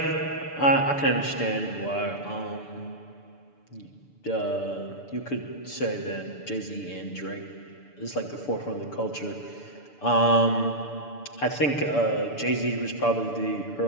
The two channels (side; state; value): right; late; 6.9 ms